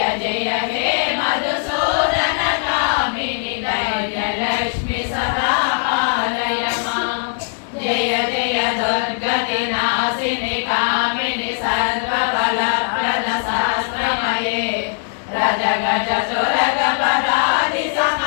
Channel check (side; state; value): right; silent; digital silence